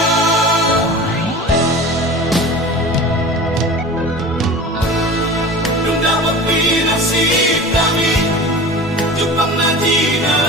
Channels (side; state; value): both; normal; correlation 0.36